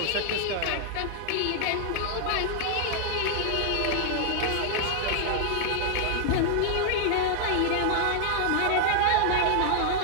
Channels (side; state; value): both; different; correlation 0.00